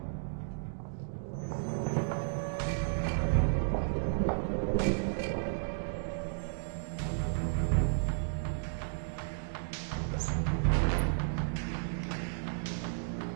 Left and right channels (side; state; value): left; silent; digital silence